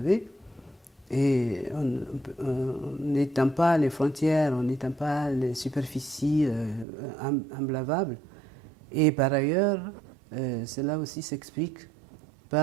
et on n'étend pas les frontières, on n'étend pas les superficies emblavables. Et par ailleurs, cela aussi s'explique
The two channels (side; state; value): left; drops out; at 6.9 s